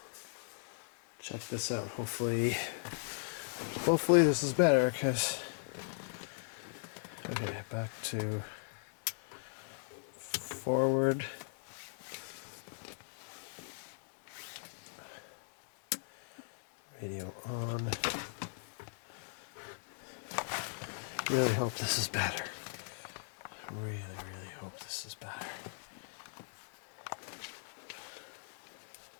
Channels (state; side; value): silent; right; digital silence